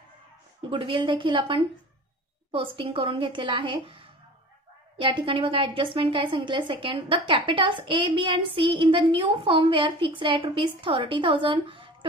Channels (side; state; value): both; normal; correlation 0.39